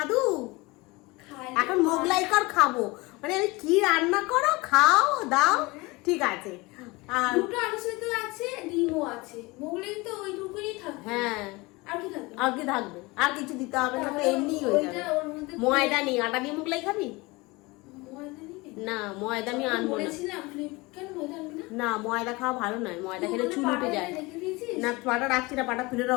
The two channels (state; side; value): quieter; right; 23.7 dB